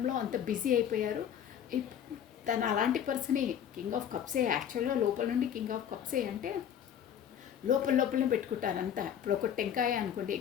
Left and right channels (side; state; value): right; quieter; 9.2 dB